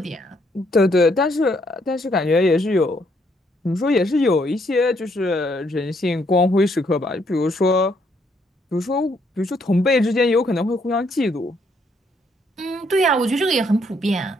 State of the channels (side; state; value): both; normal; correlation 0.71